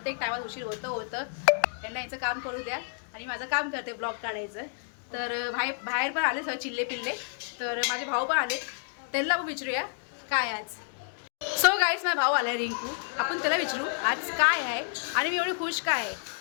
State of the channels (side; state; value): right; silent; digital silence